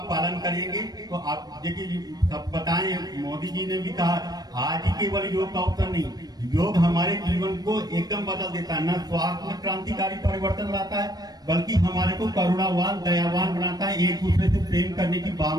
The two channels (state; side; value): late; left; 0.19 ms